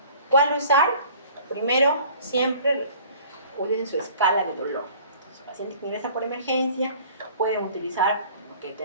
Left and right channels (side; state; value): both; inverted; correlation -0.49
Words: ¿cuál usar? Primero, siempre utilicen su escala de dolor. Entonces, el paciente que ingresa por emergencia pueden utilizar lo que